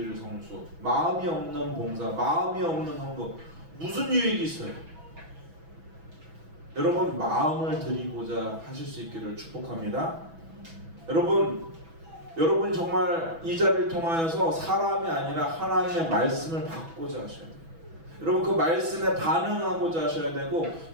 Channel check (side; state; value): left; late; 6.1 ms